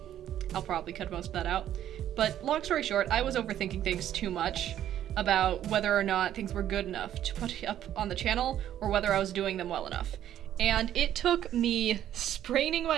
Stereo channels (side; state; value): left; quieter; 11.3 dB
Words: I'll probably cut most of that out. But long story short, I was overthinking things too much about whether or not things were good enough to put up on the channel or whether I was doing them well enough. And it took me spraining